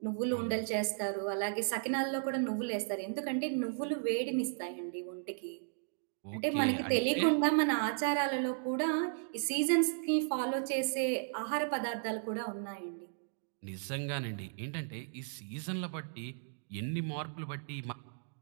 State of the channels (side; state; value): left; silent; digital silence